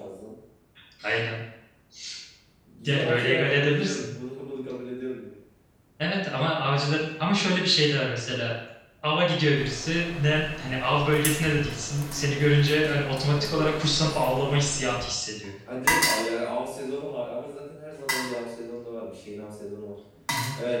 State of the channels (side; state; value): both; identical; correlation 1.00